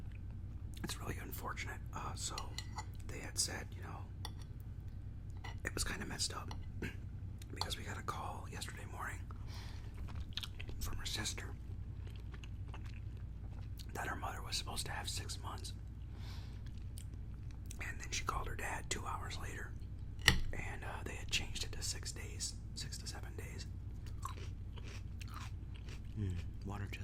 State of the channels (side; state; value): both; identical; correlation 1.00